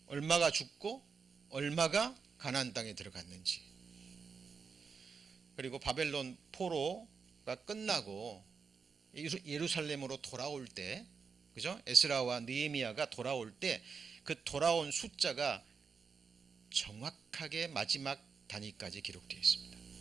얼마가 죽고 얼마가 가나안 땅에 들어갔는지, 그리고 바벨론 포로가 끝나고 예루살렘으로 돌아올 때, 그죠? 에스라와 느헤미야가 돌아올 때 그 돌아온 숫자가 정확하게 마지막 단위까지 기록되어 있습니다.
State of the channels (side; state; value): left; quieter; 5.5 dB